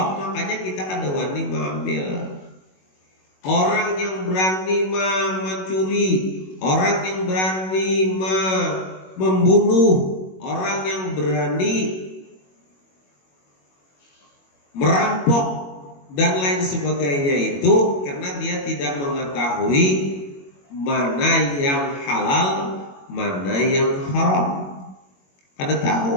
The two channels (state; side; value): late; right; 21 ms